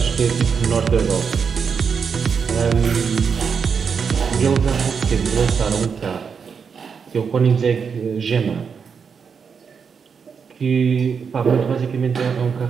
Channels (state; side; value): quieter; left; 6.2 dB